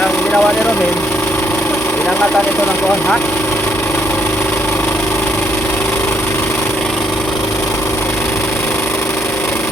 ang ginawa ni Romel, inangatan ito ng kuhan, ha?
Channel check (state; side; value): noise; right; hum, 17 dB below the sound